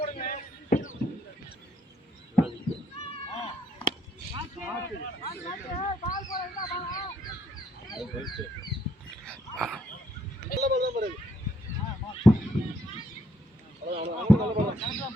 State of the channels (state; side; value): normal; both; correlation 0.70